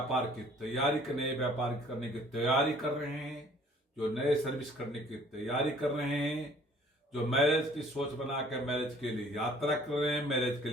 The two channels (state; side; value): normal; both; correlation 0.55